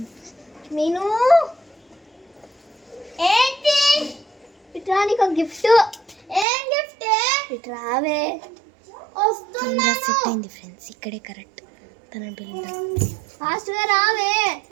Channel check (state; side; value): drops out; left; at 6.5 s